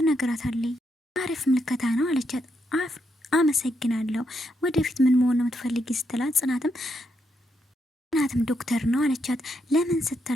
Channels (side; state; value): both; normal; correlation 0.80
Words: አሪፍ ምልከታ ነው አለቻት። አመሰግናለሁ ወደፊት ምን መሆን ነው የምትፈልጊ ስትላት፣ ጽናትም ዶክተር ነው አለቻት። ለምን